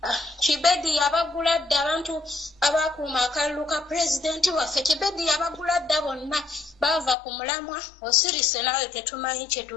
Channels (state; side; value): drops out; right; at 7.2 s